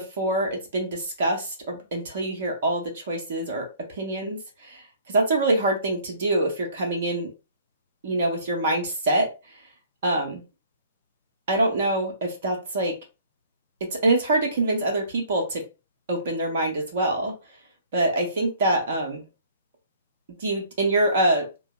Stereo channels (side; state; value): both; inverted; correlation -0.56